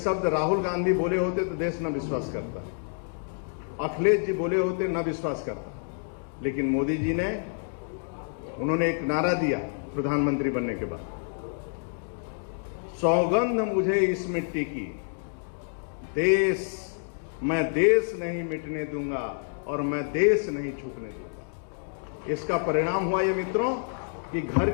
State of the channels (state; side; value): silent; right; digital silence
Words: राहुल गांधी बोले होते तो देश न विश्वास करता, अखिलेश जी बोले होते न विश्वास करता, लेकिन मोदी जी ने, उन्होंने एक नारा दिया प्रधानमंत्री बनने के बाद, सौगंध मुझे इस मिट्टी की, मैं देश नहीं मिटने दूंगा और मैं देश नहीं झुकने दूंगा। इसका परिणाम हुआ ये मित्रों कि घर